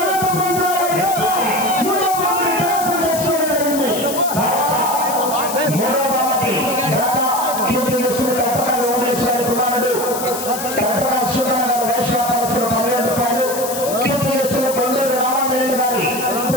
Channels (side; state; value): left; noise; hiss, 7 dB below the sound